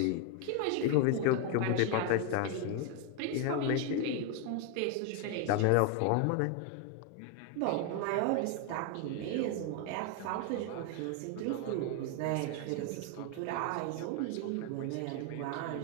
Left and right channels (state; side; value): different; both; correlation 0.01